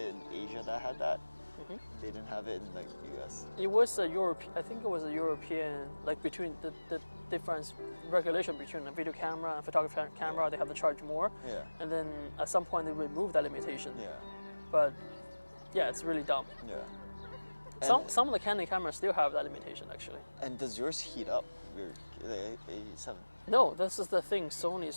in Asia that had that. They didn't have it in like US. It was a I think it was a European, like between the difference regulation between a video camera and photography camera, they have to charge more. Yeah. And then at some point they removed that limitation. Yeah. But yeah, it's really dumb. Yeah. Some of the Canon cameras still have that limitation actually. And does yours heat up? The A7? No, this is the thing. Sony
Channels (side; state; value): both; inverted; correlation -1.00